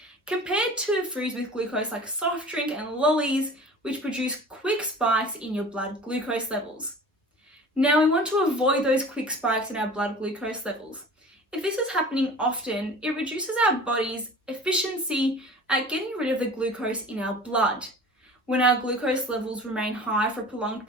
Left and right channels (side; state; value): both; normal; correlation 0.41